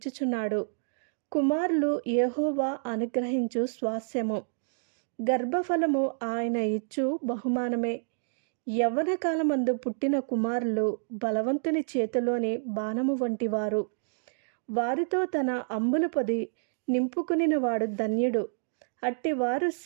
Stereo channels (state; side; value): silent; left; digital silence